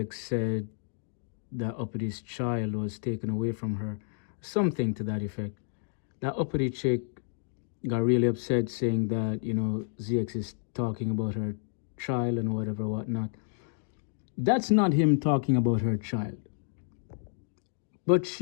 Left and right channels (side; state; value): right; silent; digital silence